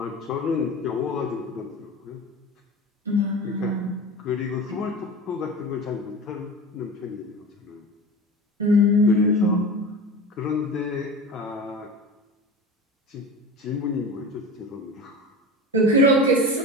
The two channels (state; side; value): normal; both; correlation 0.31